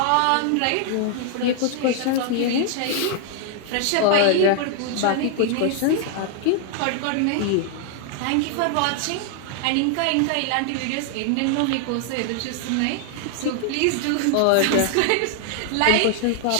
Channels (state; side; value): different; both; correlation 0.00